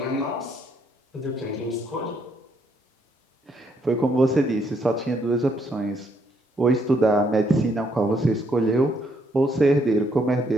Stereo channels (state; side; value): normal; both; correlation 0.72